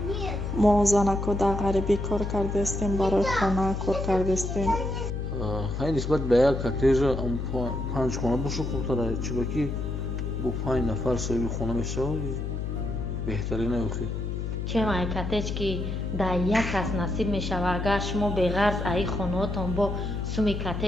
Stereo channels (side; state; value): left; noise; hum, 3 dB below the sound